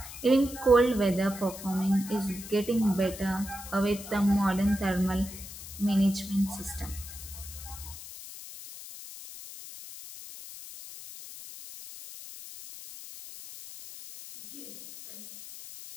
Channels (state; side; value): noise; left; hiss, 13 dB below the sound